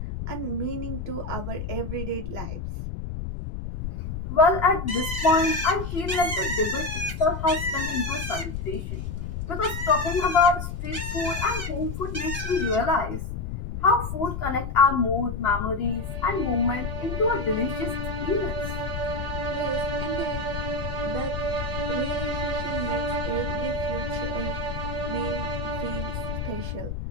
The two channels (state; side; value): noise; left; rumble, 5 dB below the sound